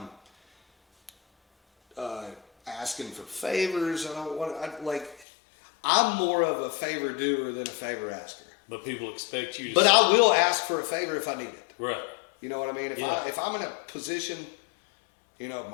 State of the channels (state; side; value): drops out; right; at 5.2 s